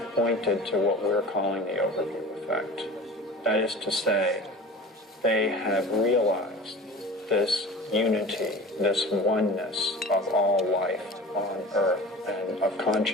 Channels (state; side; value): normal; both; correlation 0.38